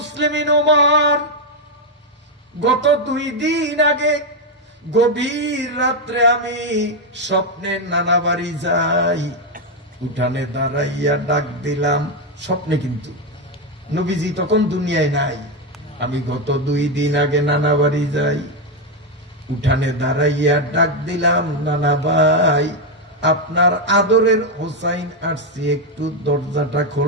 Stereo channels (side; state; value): both; normal; correlation 0.04